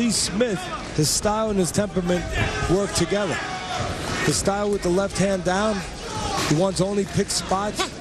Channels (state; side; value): identical; both; correlation 1.00